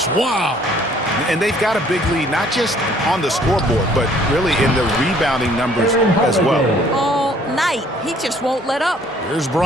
Wow. And they've got a big lead, not just on the scoreboard, but really in the rebounding numbers as well. All night. He just won't let up. Here's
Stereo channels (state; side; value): normal; both; correlation 0.59